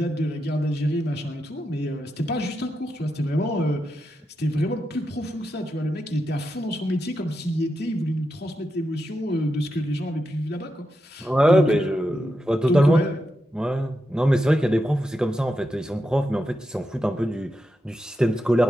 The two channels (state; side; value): normal; both; correlation 0.86